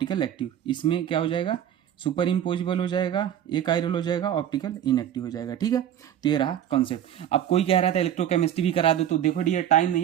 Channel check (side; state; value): left; quieter; 10.4 dB